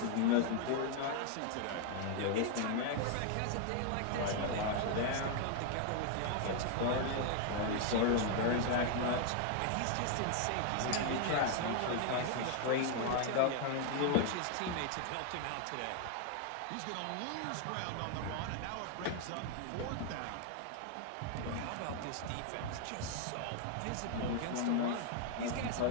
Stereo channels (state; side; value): different; both; correlation 0.00